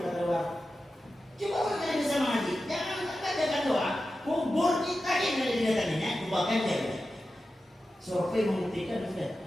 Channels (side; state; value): both; normal; correlation 0.92